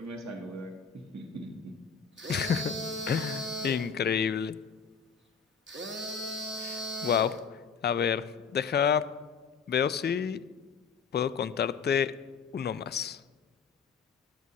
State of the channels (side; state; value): right; quieter; 6.2 dB